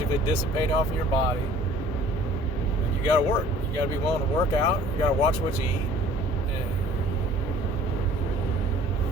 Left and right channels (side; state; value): both; normal; correlation 0.52